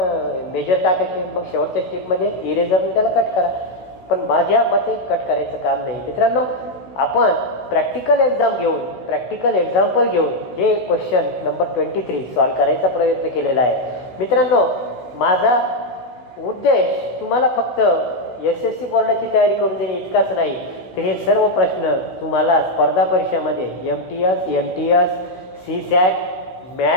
मेजर टाकायचे मग शेवटच्या स्टेपमध्ये इरेजरने त्याला कट करा. पण माझ्या मते कट करायचं काम नाही. मित्रांनो आपण प्रॅक्टिकल एक्झाम घेऊन प्रॅक्टिकल एक्झाम्पल घेऊन हे क्वेश्चन नंबर 23 सॉल्व करायचा प्रयत्न केलेला आहे. मित्रांनो माझा उद्देश तुम्हाला फक्त SSC बोर्डाची तयारी करून देणे इतकाच नाही तर हे सर्व प्रश्न तुम्हाला स्पर्धा परीक्षामध्ये MTS NTS CSAT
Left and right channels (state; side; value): late; right; 16 ms